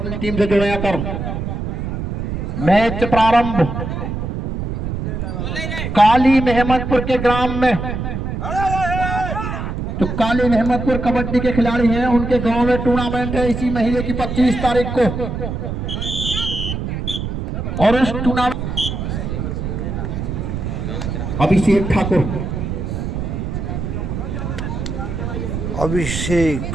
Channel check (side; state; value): right; noise; rumble, 4 dB below the sound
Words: टीम से जुड़े कर मैच प्रारंभ काली मेहमदपुर के ग्राम में। तो काली मेहमदपुर कबड्डी के खिलाड़ी हैं, उनके गांव में टूर्नामेंट है इसी महीने की 25 तारीख को। और उस टूर्नामेंट अभिषेक ठाकुर,